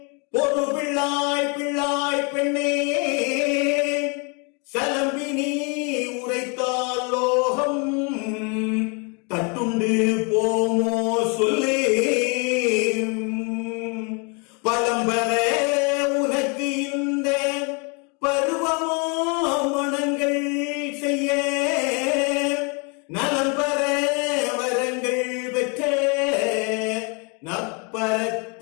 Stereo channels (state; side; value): quieter; right; 33.4 dB